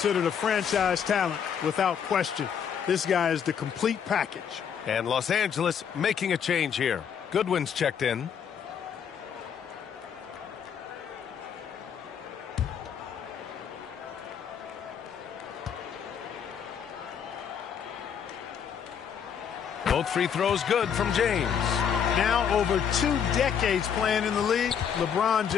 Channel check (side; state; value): right; quieter; 7.8 dB